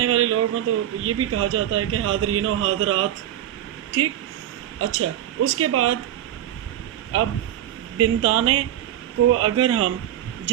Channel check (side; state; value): left; quieter; 11.7 dB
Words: والے لوگ ہوں تو یہ بھی کہا جاتا ہے کہ حاضرین و حاضرات، ٹھیک؟ اچھا، اس کے بعد اب بنتانے کو اگر ہم